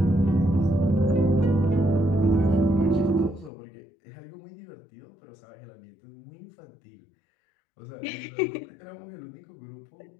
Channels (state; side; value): drops out; right; at 3.5 s